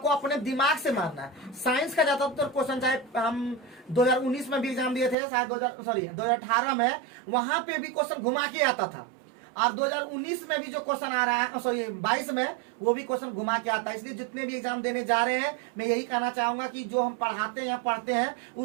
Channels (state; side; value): drops out; left; at 5.2 s